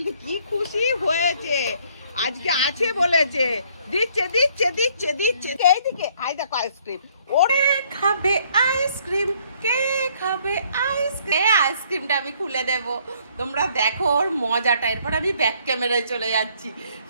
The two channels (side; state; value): both; inverted; correlation -0.64